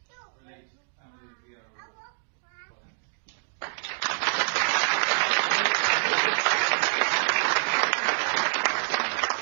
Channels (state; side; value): silent; left; digital silence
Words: Relate Family of the Year Award. Your Highness.